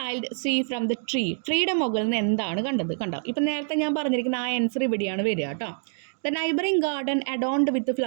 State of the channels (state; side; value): silent; left; 61 dB below the other